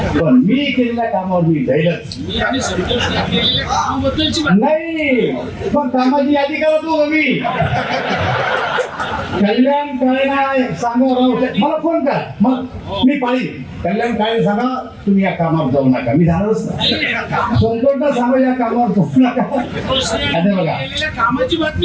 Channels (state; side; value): identical; both; correlation 1.00